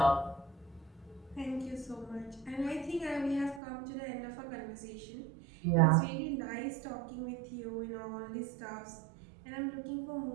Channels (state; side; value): drops out; left; at 3.6 s